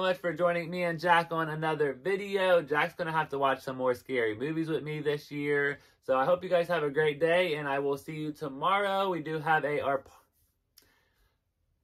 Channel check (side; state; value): both; identical; correlation 1.00